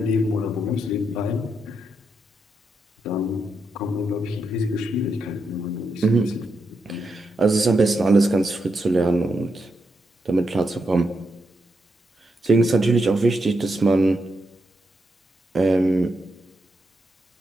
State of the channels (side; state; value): both; normal; correlation 0.83